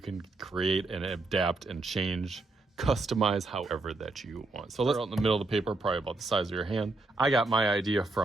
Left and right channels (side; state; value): left; quieter; 3.2 dB